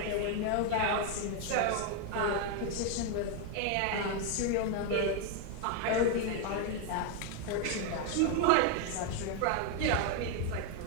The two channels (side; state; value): both; different; correlation 0.01